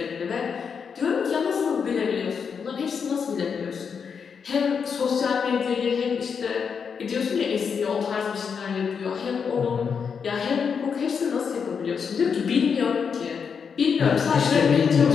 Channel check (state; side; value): quieter; right; 6.4 dB